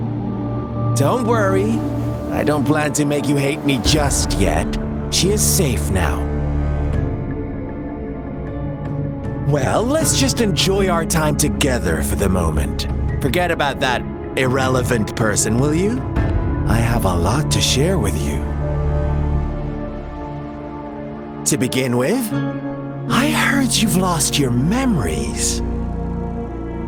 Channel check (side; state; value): both; identical; correlation 1.00